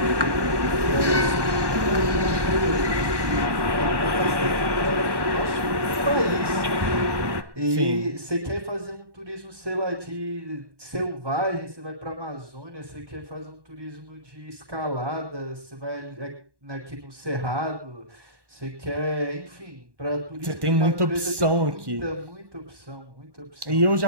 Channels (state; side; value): late; left; 1.1 ms